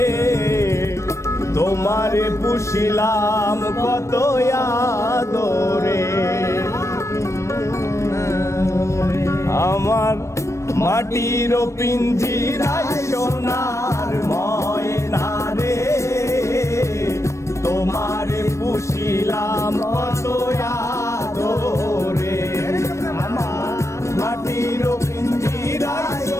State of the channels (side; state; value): right; late; 0.14 ms